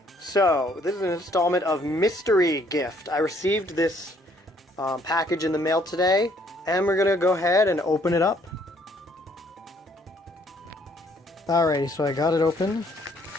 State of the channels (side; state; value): both; normal; correlation 0.65